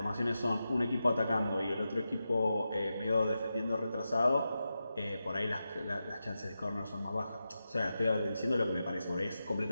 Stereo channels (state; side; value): inverted; both; correlation -0.90